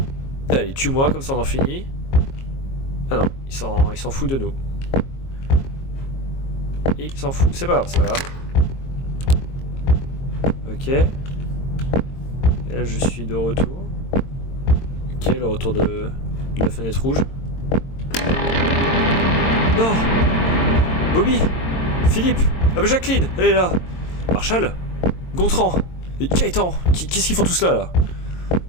Allez, tue-moi, comme ça on en finit. Ah non, il s'en fout de nous. Il s'en fout, c'est pas grave. Ok. Et là je suis de retour. Ok, le retour de la fenêtre rouge. Non! Bobby! Philippe! Ah bah Jacqueline! Elle est là! Marshall! Gontran! Gaëtan! Qu'est-ce qu'ils font tous là?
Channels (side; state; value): right; late; 22 ms